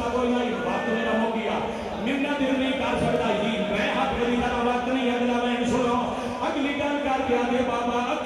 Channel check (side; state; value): both; identical; correlation 1.00